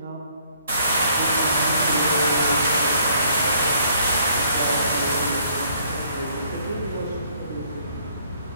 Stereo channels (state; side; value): inverted; both; correlation -0.64